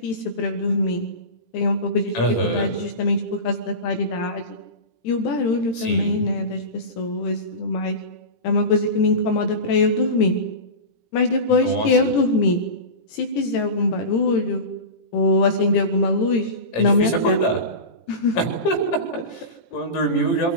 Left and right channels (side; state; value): right; late; 18 ms